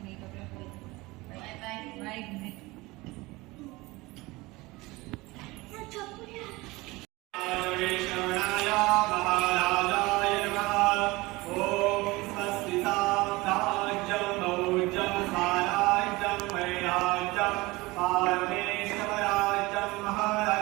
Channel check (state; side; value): quieter; left; 21.9 dB